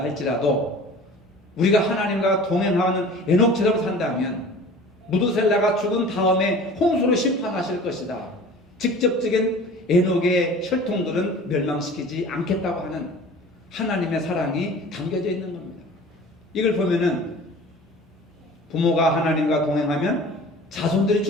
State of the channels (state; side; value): normal; both; correlation 0.42